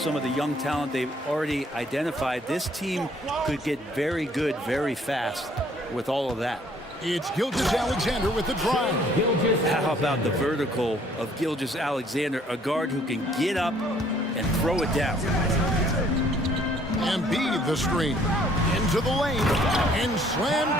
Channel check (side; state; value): both; normal; correlation 0.61